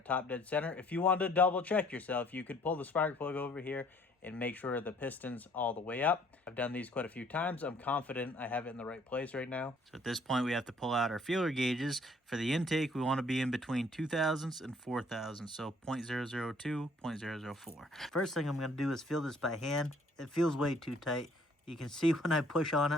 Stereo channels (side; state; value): both; normal; correlation 0.60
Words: top dead center. If you wanted to double check yourself, you could pull the spark plug over here and make sure the piston's all the way up. I've done these quite a few times. I'm confident I have it in the right place right now. So at this point, we have to pull out our feeler gauges. For the intake, we want to be in between 2000s and 4000s, so 0.002, 0.004. First thing I'm going to do is feel this by hand. It feels way too tight. You can see when I push on it,